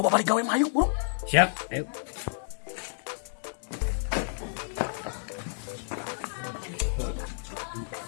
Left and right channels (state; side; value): silent; right; digital silence